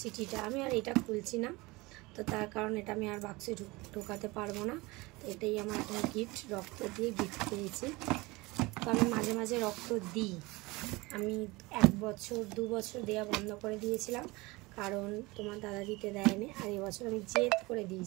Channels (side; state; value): left; quieter; 22.9 dB